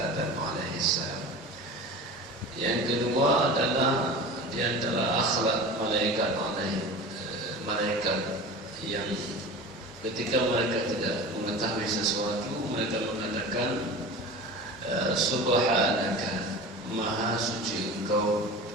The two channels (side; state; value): both; normal; correlation 0.34